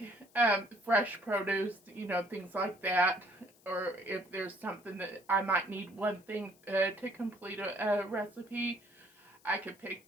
fresh produce, you know, things like that. Or if there's something that I might need one thing to complete a recipe, I could pick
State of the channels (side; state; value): left; noise; hiss, 29 dB below the sound